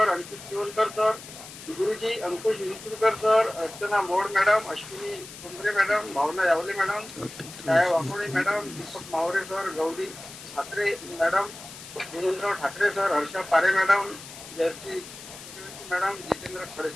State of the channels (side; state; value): left; noise; hiss, 15 dB below the sound